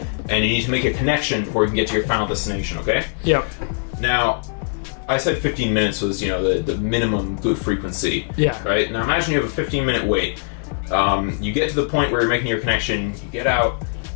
And you need to make a connection before you can get to your final destination, okay? Yep. Now, I said 15 minutes was, the minimum good frequency. Yeah. Right? Now imagine you have a 15-minute wait. You get to the point where you're making your connection, you get out,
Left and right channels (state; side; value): silent; right; digital silence